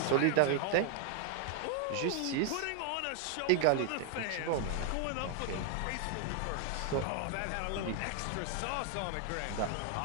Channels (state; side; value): different; both; correlation 0.00